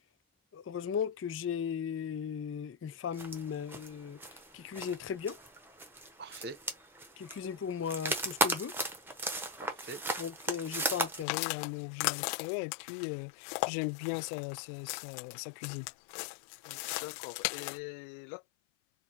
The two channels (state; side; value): drops out; right; at 11.2 s